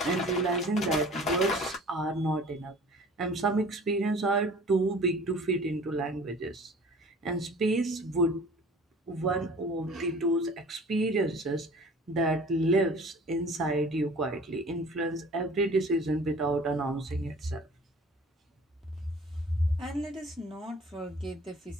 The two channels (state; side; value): normal; both; correlation 0.46